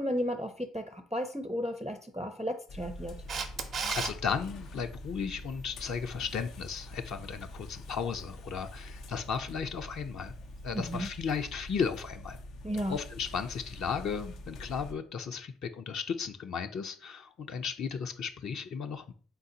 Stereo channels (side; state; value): right; quieter; 3.4 dB